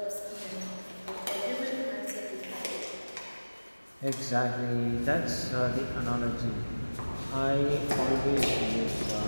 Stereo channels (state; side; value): inverted; both; correlation -1.00